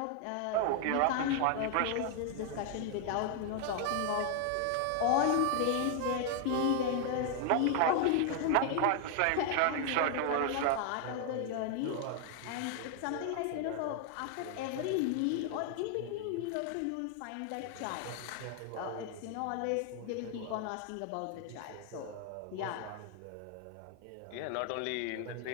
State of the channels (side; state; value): both; different; correlation 0.00